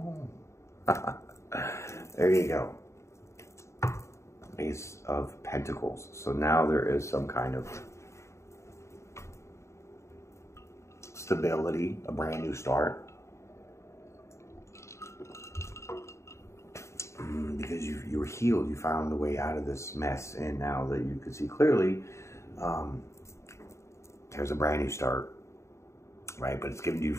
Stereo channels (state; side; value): late; right; 0.14 ms